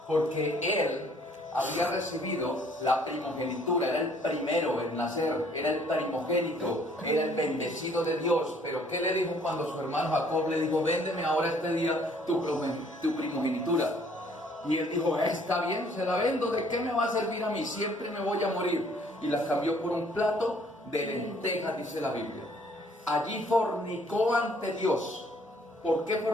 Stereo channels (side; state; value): both; normal; correlation 0.60